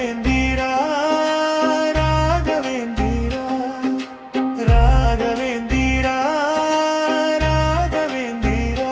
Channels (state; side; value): identical; both; correlation 1.00